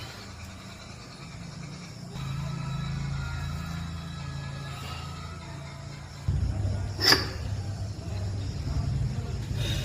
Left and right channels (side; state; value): both; identical; correlation 1.00